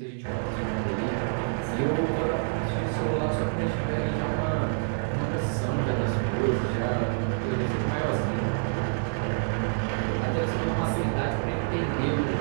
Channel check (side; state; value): left; silent; digital silence